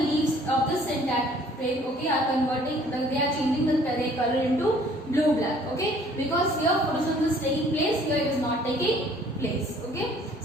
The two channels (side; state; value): both; normal; correlation 0.57